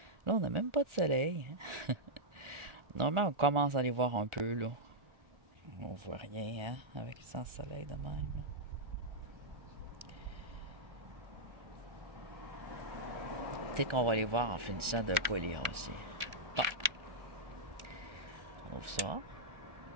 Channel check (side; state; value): left; late; 1.4 ms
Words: Là, on n'a même pas de soleil. Normalement, on commence à les voir un peu, là. On voit rien, hein, avec le sans soleil de même, là. Peut-être qu'on va les voir en finissant de polir aussi. Bon. On ouvre ça.